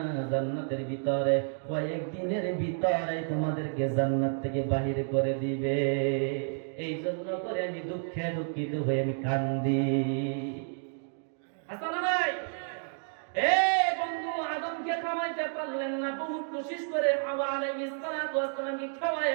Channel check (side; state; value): left; silent; 57 dB below the other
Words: জান্নাতের ভিতরে, কয়েকদিনের ভিতরে তোমাদেরকে জান্নাত থেকে বাহির করে দিবে। এই জন্য করে আমি দুঃখে দুঃখিত হয়ে আমি কান্দি। আসলে ভাই, বন্ধু, আদমকে খাওয়াইতে পারলেন না, বহুত কোশিশ করে হাওয়া আলাইহিস সালাতু ওয়াস সালামকে